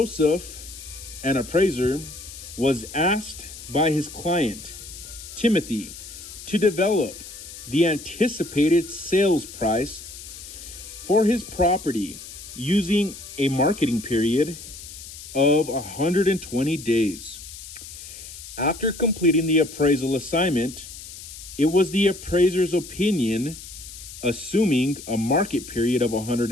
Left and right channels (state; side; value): noise; left; hiss, 14 dB below the sound